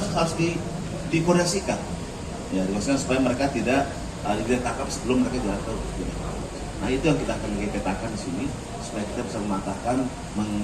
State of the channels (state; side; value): identical; both; correlation 1.00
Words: dikoordinasikan, ya, supaya mereka tidak ditangkap sebelum mereka jatuh. Nah, itu yang kita akan petakan di sini supaya kita bisa mematahkan,